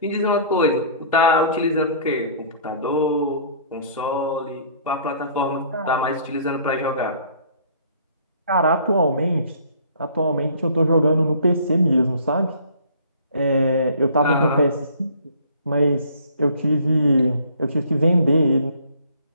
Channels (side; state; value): both; inverted; correlation -0.54